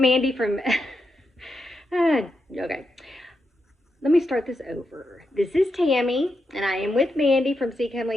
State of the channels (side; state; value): both; normal; correlation 0.85